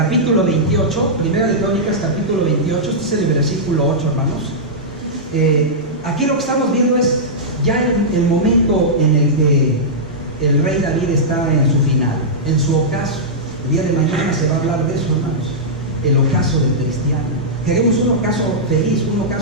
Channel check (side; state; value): both; normal; correlation -0.12